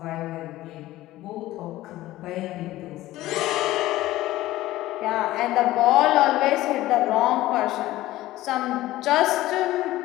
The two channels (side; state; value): right; quieter; 16.1 dB